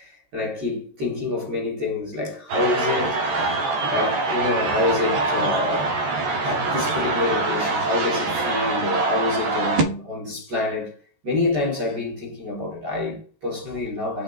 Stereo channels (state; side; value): late; left; 13 ms